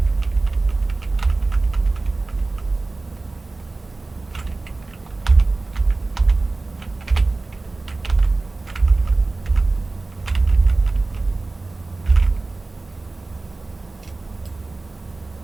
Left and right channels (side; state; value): left; quieter; 3.3 dB